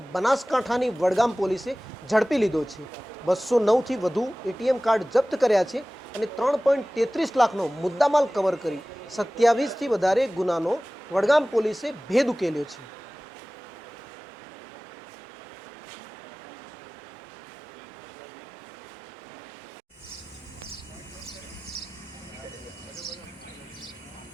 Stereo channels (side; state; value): both; normal; correlation 0.98